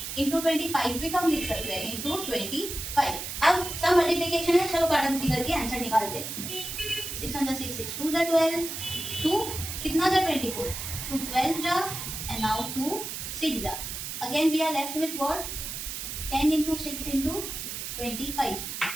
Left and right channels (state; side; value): noise; right; hiss, 6 dB below the sound